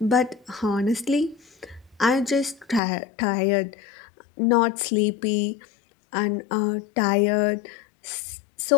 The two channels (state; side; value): drops out; right; at 2.8 s